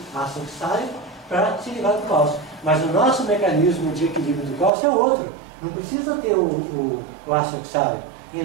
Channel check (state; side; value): drops out; left; at 4.7 s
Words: ácido oxálico para se livrar do cálcio. Mas o nosso mecanismo de equilíbrio do cálcio é outro. Não precisa ter o ácido oxálico. E